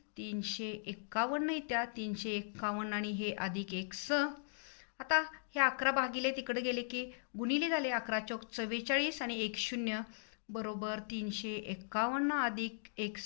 351 येत्या. 351 आणि हे अधिक x. आता हे 11 भागिले तिकडे गेले की गुणिले झाले. 11 चौक 44 आणि 1 0 बरोबर 351 अधिक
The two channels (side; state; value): right; silent; digital silence